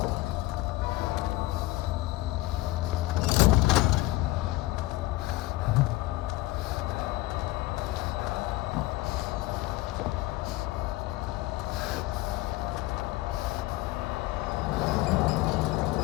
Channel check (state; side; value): quieter; right; 19.1 dB